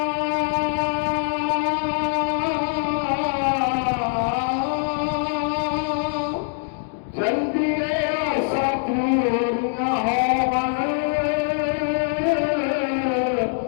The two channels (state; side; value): silent; right; digital silence